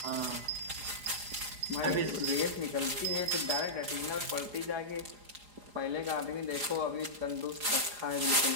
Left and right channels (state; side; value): late; left; 4.9 ms